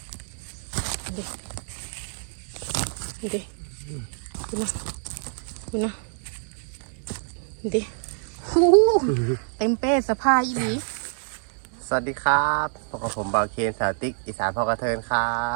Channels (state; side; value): silent; left; 61 dB below the other